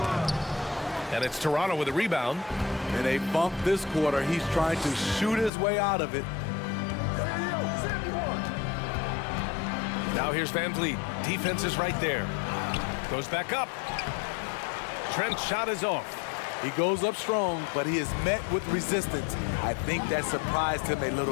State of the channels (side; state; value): right; drops out; at 5.5 s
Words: And it's Toronto with a rebound. And they bump this quarter. He's trying to shoot his way out of it. Now here's Van Vliet. Defense is right there. Goes back up. Trent's shot is off. He goes up strong, but he is met with resistance. I think that surprised him a